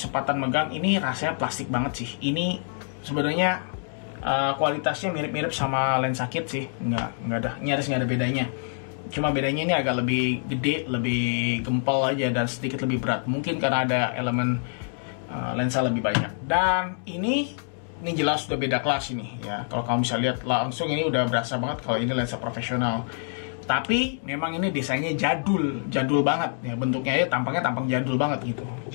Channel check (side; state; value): right; silent; 61 dB below the other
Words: megang, ini rasanya plastik banget sih. Ini sebenarnya kualitasnya mirip-mirip sama lensa kit sih, nggak ada, nyaris nggak ada bedanya. Cuma bedanya ini agak lebih gede, lebih gempal aja, dan sedikit lebih berat. Mungkin karena ada elemen lensa lebih banyak. Dan ini jelas sudah beda kelas ini ya. Kalau kamu bisa lihat langsung, ini udah berasa banget kalau ini lensa profesional. Tapi memang ini desainnya jadul banget ya, bentuknya ya, tampang jadul banget gitu.